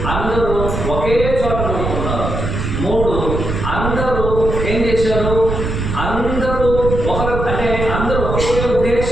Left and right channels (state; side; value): noise; right; rumble, 3 dB below the sound